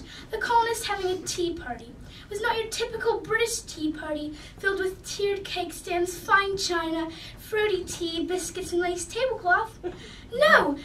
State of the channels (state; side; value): identical; both; correlation 1.00